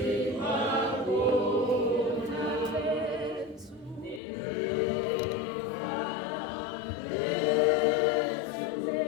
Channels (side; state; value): right; drops out; at 4.2 s